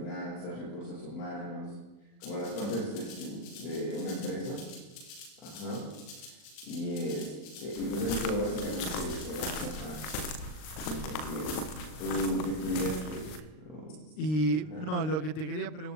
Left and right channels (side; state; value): right; late; 39 ms